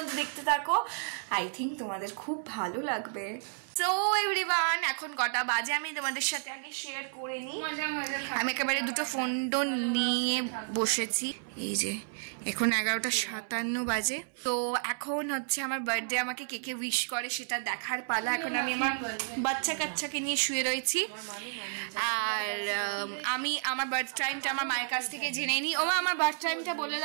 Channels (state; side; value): silent; left; 57 dB below the other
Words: দেখতে থাকো, আই থিঙ্ক তোমাদের খুব ভালো লাগবে। সো এভরিওয়ান, এখন কটা বাজে আমি তোমাদের সাথে আগে শেয়ার করে নিই। আমি একেবারে দুটো ফোন টোন নিয়ে বসেছি। এই যে এখন 11:57 বাজে। তো এখন হচ্ছে আমার বার্থডে, আমাকে কে কে উইশ করে সেটা দেখার পালা। এখন আমি আমার বাচ্চা কাচ্চাকে নিয়ে শুয়ে রয়েছি, আর আমি আমার বার্থ টাইমটা আমার মায়ের কাছ থেকে জেনে নিই। ওমা, আমার বার্থ টাইমটা বলে